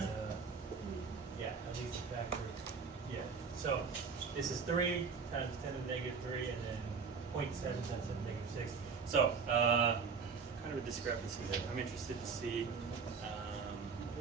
Yeah, at least a factor. Yeah. So this is 3 times 10 to the negative 3, and then 0.7 times 10 to the negative 6. So kind of a discrepancy there. I'm interested to see.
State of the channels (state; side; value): quieter; left; 5.5 dB